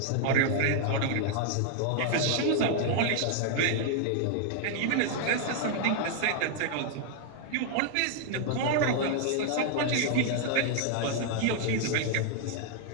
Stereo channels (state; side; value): different; both; correlation 0.00